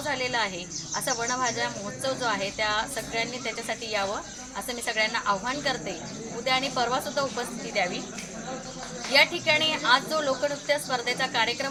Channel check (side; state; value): both; identical; correlation 1.00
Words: झालेलं आहे असा वनभाज्या महोत्सव जो आहे त्या सगळ्यांनी त्याच्यासाठी यावं असं मी सगळ्यांना आव्हान करते। उद्या आणि परवा सुद्धा उपस्थिती द्यावी। या ठिकाणी आज जो लोकनृत्य स्पर्धेचा